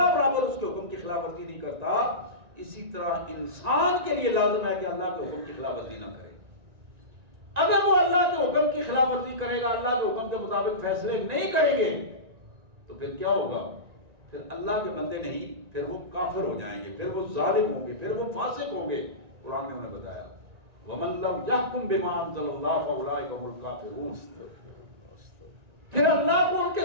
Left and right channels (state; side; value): late; left; 1.9 ms